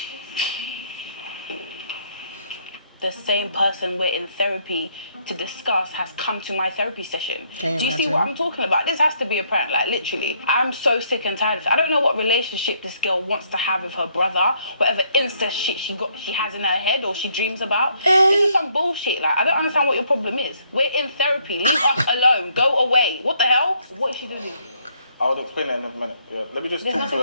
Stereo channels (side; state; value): both; inverted; correlation -0.69